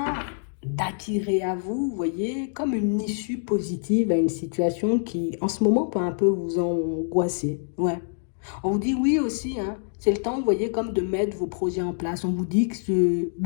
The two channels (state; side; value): silent; right; digital silence